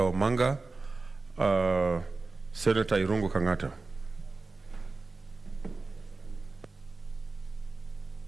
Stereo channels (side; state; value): left; quieter; 3.7 dB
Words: Omanga. Senator Irungu Kangata.